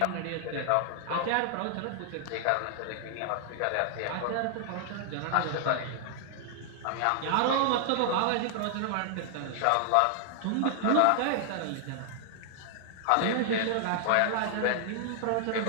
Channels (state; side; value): different; both; correlation 0.00